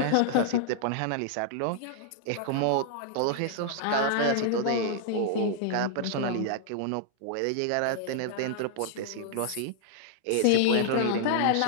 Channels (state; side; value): different; both; correlation -0.01